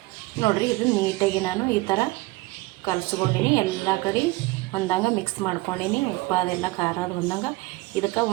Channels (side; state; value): left; quieter; 21.4 dB